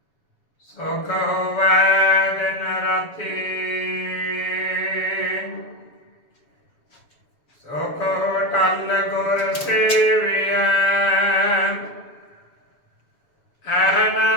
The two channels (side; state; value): right; late; 7.1 ms